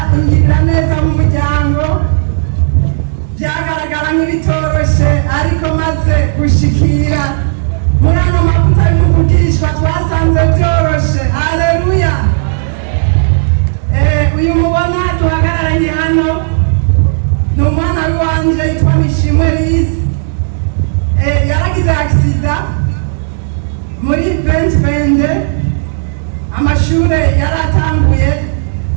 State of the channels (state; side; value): silent; left; digital silence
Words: ingirira neza mu muryango, byagaragara nk'ibitoroshe ariko maze gushikira muri ano mavuta y'umuvugishwa twasanze byoroshe. Haleluya. Uyu mubona duhagararanye hano ni umwana w'iwanje yitwa Mishimwe Lize. Yaragize agisida muri 2020, amashure yaratanguye,